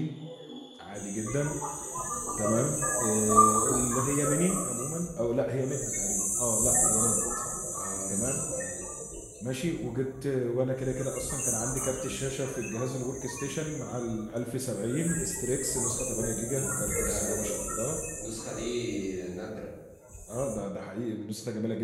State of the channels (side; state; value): both; identical; correlation 1.00